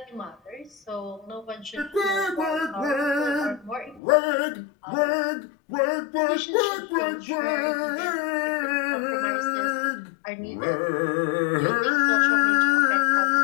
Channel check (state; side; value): drops out; right; at 4.0 s